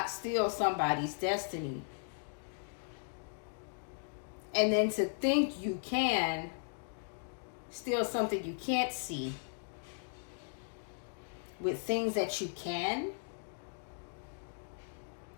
steal somebody's destiny. And then to think you can steal something you can't see with things that you can.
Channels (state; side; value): silent; right; digital silence